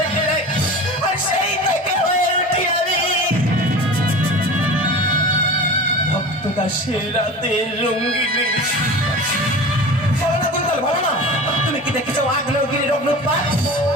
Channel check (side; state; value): both; normal; correlation 0.34